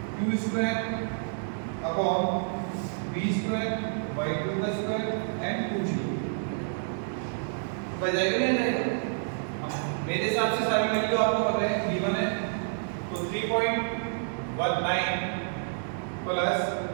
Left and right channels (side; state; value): left; silent; digital silence